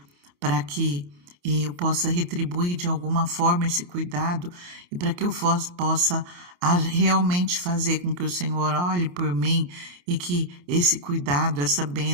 para que eu possa retribuir de alguma forma esse cuidado e para que eu possa realmente fazer com que o Senhor olhe por mim e que esse cuidado, essa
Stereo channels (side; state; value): left; late; 28 ms